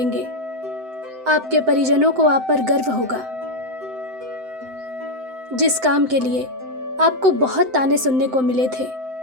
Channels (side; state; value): left; late; 7.8 ms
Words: आपके परिजनों को आप पर गर्व होगा। जिस काम के लिए आपको बहुत ताने सुनने को मिले थे,